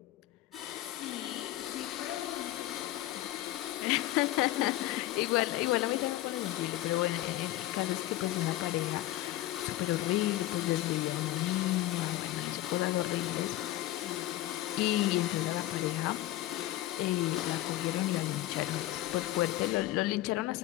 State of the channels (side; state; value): right; quieter; 15.5 dB